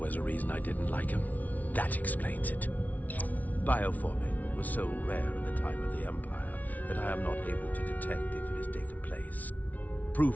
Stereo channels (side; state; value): right; late; 0.074 ms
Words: a reason I didn't like him. That explains it. Bioforming was so rare in the time of the Empire that I am not able to detect if it has taken place.